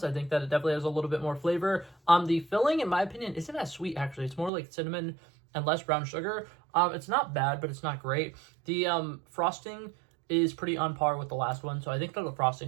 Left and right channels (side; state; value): left; drops out; at 4.5 s